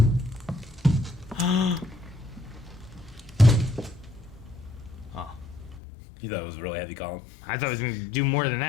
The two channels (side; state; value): right; drops out; at 5.8 s